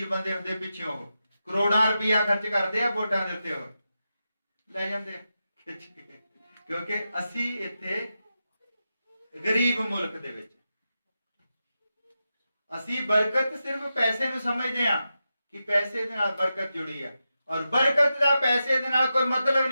ਬੰਦੇ ਹੁੰਦੇ ਪਿੱਛੇ, ਉਹ ਕਰੋੜਾਂ ਰੁਪਇਆ ਖਰਚ ਕਰਦੇ ਆ ਵੋਟਾਂ ਦੇ ਉੱਤੇ, ਉਹ ਲੈ ਜਾਂਦੇ ਖਿੱਚ ਕੇ। ਕਿਉਂਕਿ ਅਸੀਂ ਇੱਥੇ ਗਰੀਬ ਮੁਲਕ ਦੇ ਵਿੱਚ ਅਸੀਂ ਬਰਕਤ ਸਿਰਫ ਪੈਸੇ ਨੂੰ ਸਮਝਦੇ ਹਾਂ ਕਿ ਪੈਸੇ ਦੇ ਨਾਲ ਬਰਕਤ ਜੁੜੀ ਹੈ, ਔਰ ਬਰਕਤ ਦਾ ਪੈਸੇ ਦੇ ਨਾਲ ਕੋਈ ਮਤਲਬ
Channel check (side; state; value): both; inverted; correlation -0.90